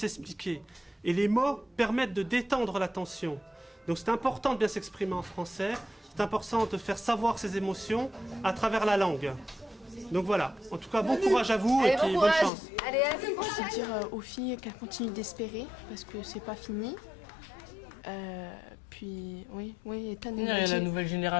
Et les mots permettent de détendre la tension. Donc c'est important de bien s'exprimer en français, c'est important de faire savoir ses émotions à travers la langue. Donc voilà, en tout cas, bon courage à vous et puis bonne chance. Allez, à la Je vais dire aux filles qu'elles continuent d'espérer parce que c'est pas fini. Puis, oui, Ethan il y a la nouvelle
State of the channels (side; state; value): right; drops out; at 12.5 s